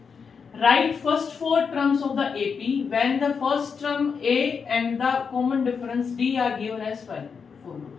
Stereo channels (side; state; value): right; quieter; 5.9 dB